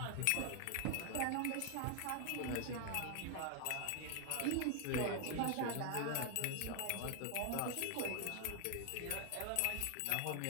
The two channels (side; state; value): both; different; correlation 0.00